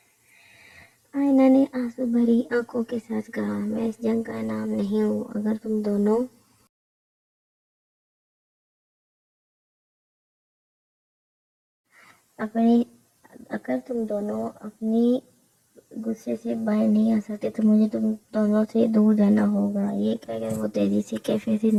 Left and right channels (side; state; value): both; identical; correlation 1.00